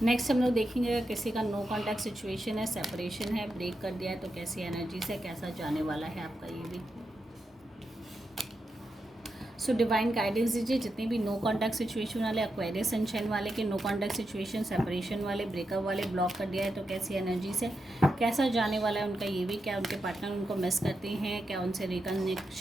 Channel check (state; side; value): normal; both; correlation 0.87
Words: नेक्स्ट हम लोग देखेंगे अगर किसी का नो कॉन्टैक्ट सिचुएशन है, सेपरेशन है, ब्रेक कर दिया है, तो कैसी एनर्जी से कैसा जाने वाला है आपका ये भी। सो डिवाइन गाइडेंस दीजिए जितने भी नो कॉन्टैक्ट सिचुएशन वाले, एक्वेरियस सनशाइन वाले के नो कॉन्टैक्ट सिचुएशन, सेपरेशन वाले, ब्रेकअप वाले, ब्लॉक कर दिया है, तो कैसी एनर्जी से कैसा जाने वाला है उनका ये भी। क्या उनके पार्टनर उनको मिस करते हैं, क्या उनसे